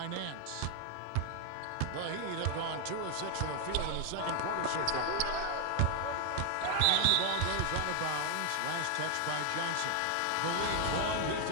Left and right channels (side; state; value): both; different; correlation 0.00